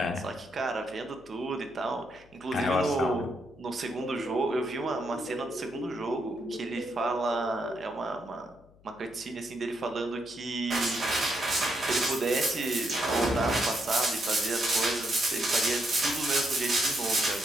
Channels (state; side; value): noise; left; hum, 27 dB below the sound